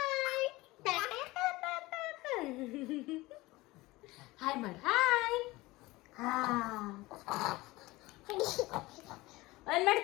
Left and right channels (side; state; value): right; quieter; 20.3 dB